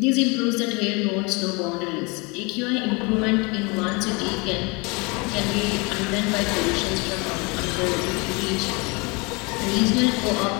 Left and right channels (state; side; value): quieter; right; 28.6 dB